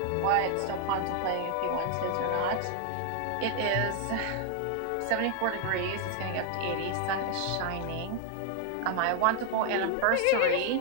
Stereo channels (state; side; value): different; both; correlation 0.00